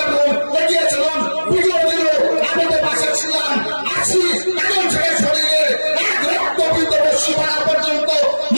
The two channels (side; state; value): both; inverted; correlation -1.00